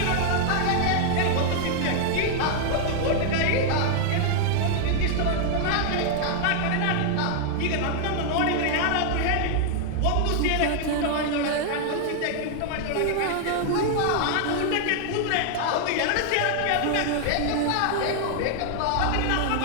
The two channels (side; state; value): both; different; correlation 0.00